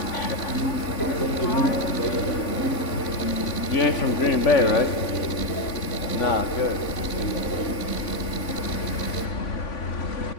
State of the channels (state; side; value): late; right; 3.5 ms